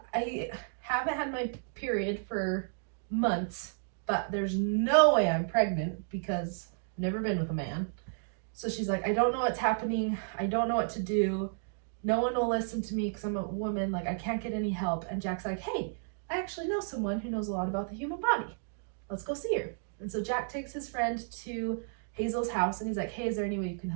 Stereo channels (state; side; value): silent; left; digital silence